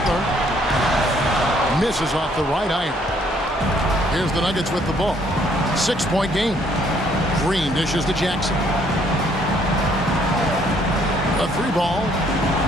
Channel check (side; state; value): both; normal; correlation 0.65